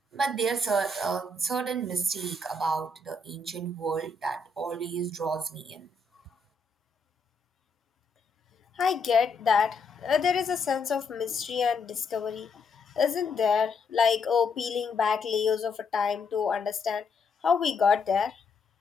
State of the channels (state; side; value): quieter; right; 3.6 dB